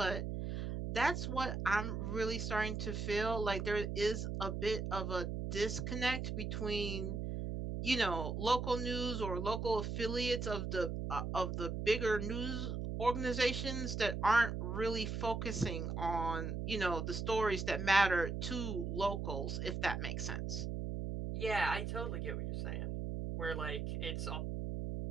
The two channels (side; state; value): right; noise; hum, 3 dB below the sound